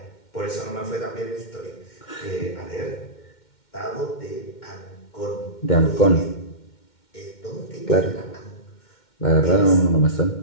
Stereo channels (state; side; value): late; right; 2.1 ms